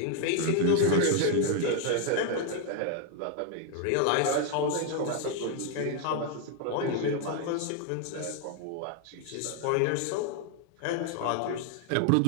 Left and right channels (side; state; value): both; different; correlation 0.00